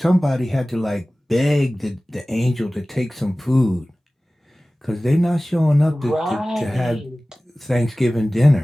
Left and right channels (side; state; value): both; normal; correlation 0.97